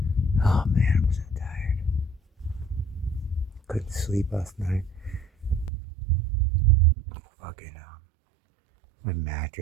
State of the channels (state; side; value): drops out; left; at 5.7 s